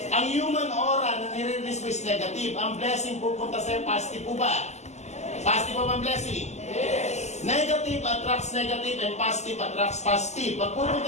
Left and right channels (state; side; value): late; right; 0.33 ms